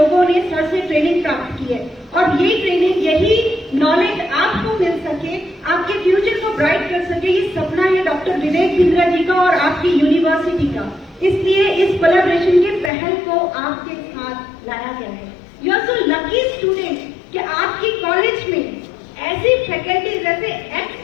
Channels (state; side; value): drops out; right; at 12.9 s